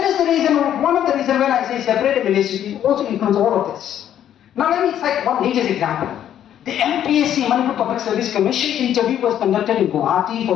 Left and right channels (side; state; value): right; quieter; 10.5 dB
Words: is the reason, one of the reasons when I say separate administration, it also includes all of this. Now let me cite one latest example. The MPSC, Manipur Public Service Commission interview was conducted in Guwahati for